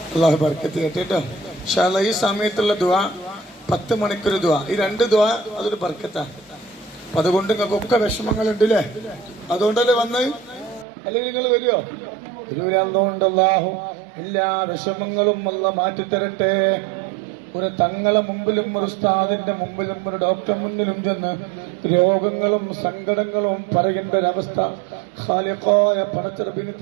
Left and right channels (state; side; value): drops out; left; at 10.9 s